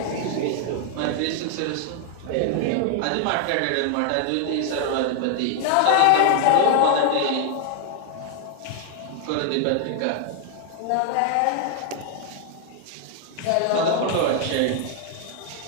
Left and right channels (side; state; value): both; different; correlation 0.00